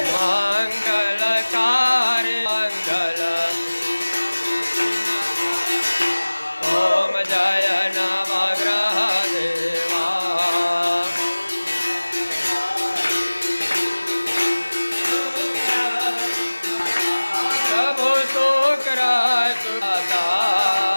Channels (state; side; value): inverted; both; correlation -1.00